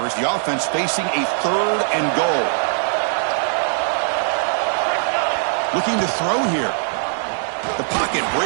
as the offense facing a 3rd and goal. Looking to throw here. The pocket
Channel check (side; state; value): left; silent; digital silence